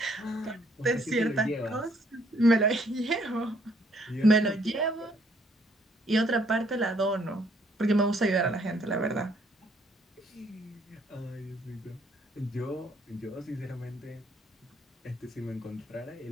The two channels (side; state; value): both; normal; correlation 0.66